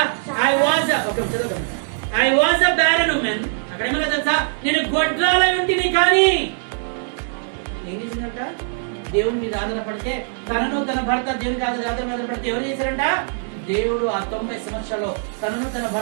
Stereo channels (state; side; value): silent; left; digital silence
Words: I was a barren women. అక్కడ ఏమన్నా తెలుసా? నేను గొడ్రాలై ఉంటిని. కానీ ఏం చేసిందంట? దేవుని మీద ఆధారపడితే, తనను తన భర్త దేవునికి ఆధారపడితే ఎవరు చేశారంట? దేవుడు ఆ 90 సంవత్సరాల్లో తనను తన